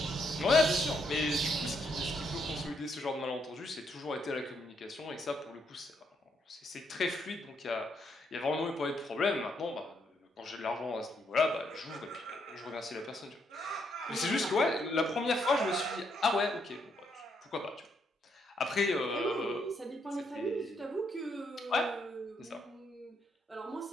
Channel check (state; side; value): normal; both; correlation 0.75